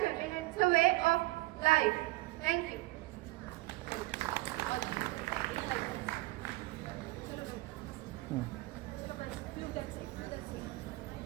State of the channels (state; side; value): quieter; left; 20.6 dB